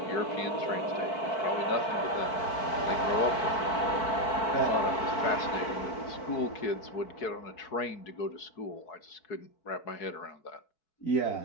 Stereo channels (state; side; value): late; right; 4.5 ms